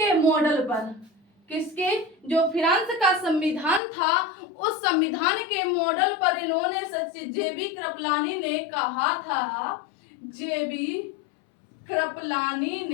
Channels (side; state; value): right; drops out; at 3.8 s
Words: मॉडल पर, किसके? जो फ्रांस का संविधान था उस संविधान के मॉडल पर इन्होंने जेबी कृपलानी ने कहा था, जेबी कृपलानी